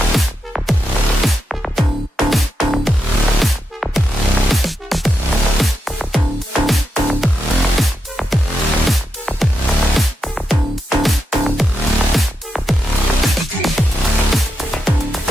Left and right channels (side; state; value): both; normal; correlation 0.85